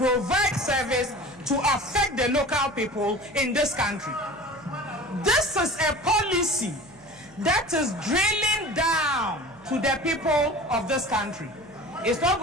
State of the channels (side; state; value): right; noise; hum, 25 dB below the sound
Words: service to affect the local people in this country? This is a policy that is drilling down to the people of this country. It's not